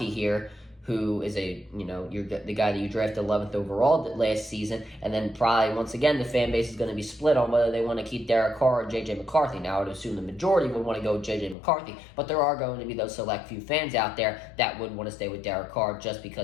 here, who is you're the guy that you drafted 11th overall last season, and then probably once again the fan base is going to be split on whether they want to keep Derek Carr or JJ McCarthy. Now I would assume the majority would want to go with JJ McCarthy, but there are going to be those select few fans out there that would want to stay with Derek Carr just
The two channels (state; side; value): drops out; right; at 11.6 s